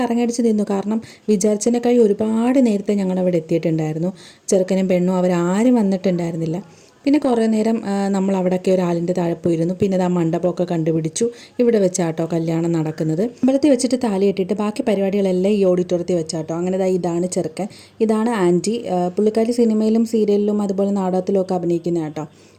നിന്നു. കാരണം വിചാരിച്ചതിനേക്കാൾ ഒരുപാട് നേരത്തെ ഞങ്ങളവിടെ എത്തിയിട്ടുണ്ടായിരുന്നു. ചെറുക്കനും പെണ്ണും അവരാരും വന്നിട്ടുണ്ടായിരുന്നില്ല. പിന്നെ കുറേ നേരം നമ്മൾ അവിടെയൊക്കെ ഒരാളിൻ്റെ താഴെ പോയിരുന്നു. പിന്നെ ആ മണ്ഡപമൊക്കെ കണ്ടുപിടിച്ചു. ഇവിടെ വെച്ചാട്ടോ കല്യാണം നടക്കുന്നത്. അമ്പലത്തിൽ വെച്ചിട്ട് താലി കെട്ടിയിട്ട് ബാക്കി പരിപാടികളെല്ലാം ഈ ഓഡിറ്റോറിയത്തിൽ വെച്ചാട്ടോ. അങ്ങനെ ഇതാണ് ചെറുക്കൻ, ഇതാണ് ആൻറ്റി. പുള്ളിക്കാരി സിനിമയിലും സീരിയലിലും അതുപോലെ നാടകത്തിലും ഒക്കെ അഭിനയിക്കുന്ന കേട്ടോ.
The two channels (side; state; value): both; identical; correlation 1.00